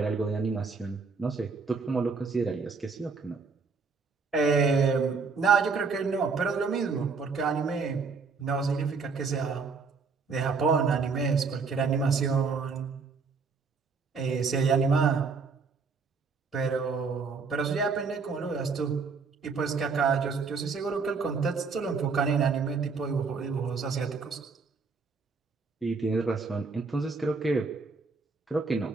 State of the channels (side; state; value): left; quieter; 4.8 dB